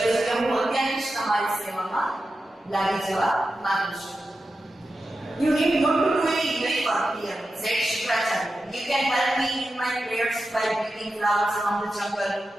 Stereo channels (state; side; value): normal; both; correlation 0.91